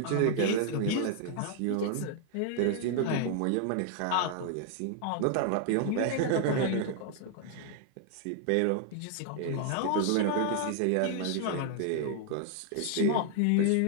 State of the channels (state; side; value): different; both; correlation 0.00